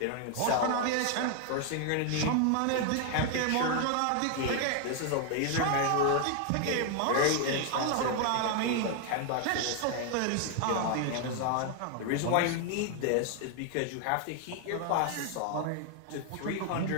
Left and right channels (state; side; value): different; both; correlation 0.00